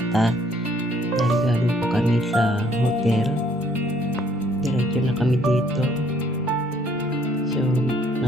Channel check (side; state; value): both; normal; correlation 0.64